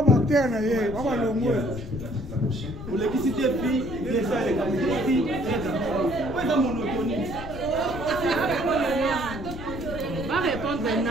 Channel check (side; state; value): left; noise; rumble, 11 dB below the sound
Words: bactère na ye baba longo pour l'électricité puis déjà les capacités ouais dans monotonie va répondre